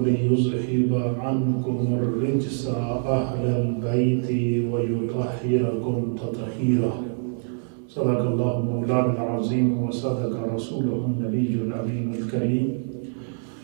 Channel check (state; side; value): silent; left; 62 dB below the other